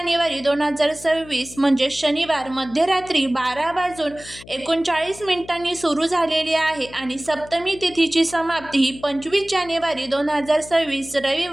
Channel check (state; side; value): noise; left; hum, 19 dB below the sound